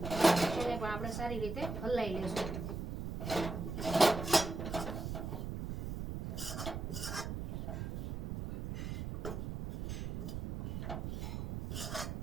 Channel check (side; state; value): right; noise; rumble, 4 dB below the sound